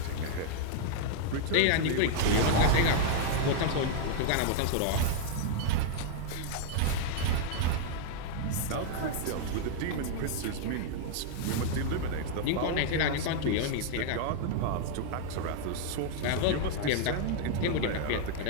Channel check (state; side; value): different; both; correlation -0.01